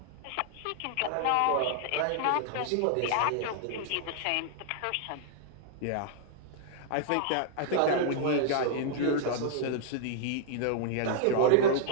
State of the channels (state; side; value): different; both; correlation -0.01